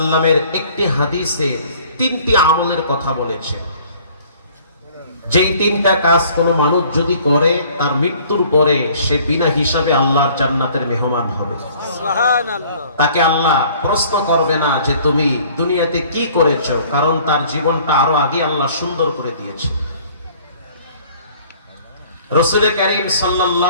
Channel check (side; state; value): both; inverted; correlation -0.54